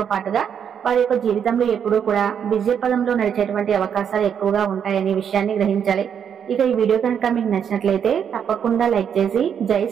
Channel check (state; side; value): quieter; left; 8.0 dB